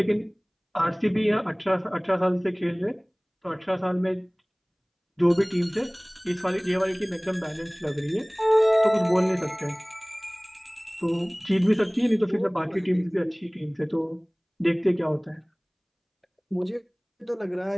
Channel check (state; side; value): identical; both; correlation 1.00